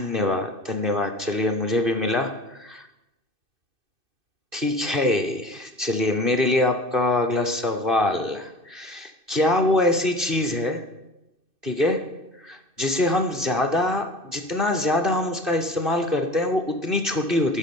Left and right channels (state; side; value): late; left; 2.6 ms